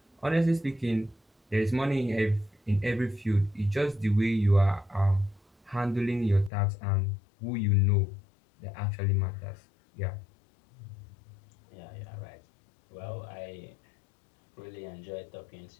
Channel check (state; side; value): drops out; right; at 6.5 s